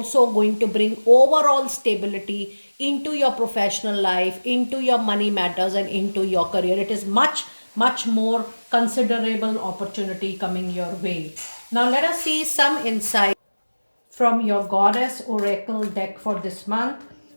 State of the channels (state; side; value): inverted; both; correlation -1.00